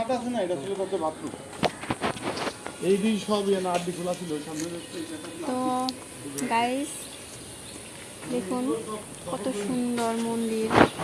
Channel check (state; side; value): identical; both; correlation 1.00